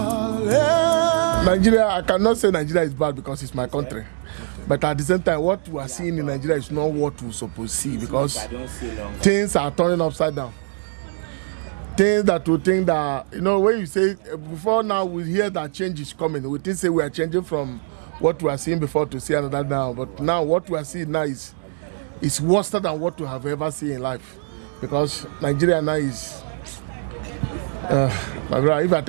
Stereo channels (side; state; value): left; silent; 64 dB below the other